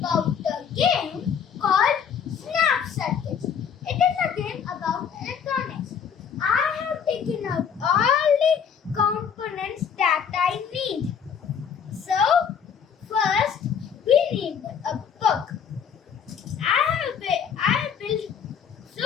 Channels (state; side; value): quieter; right; 7.4 dB